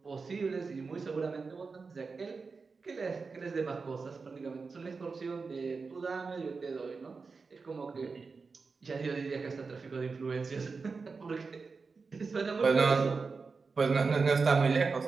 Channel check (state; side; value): quieter; left; 4.6 dB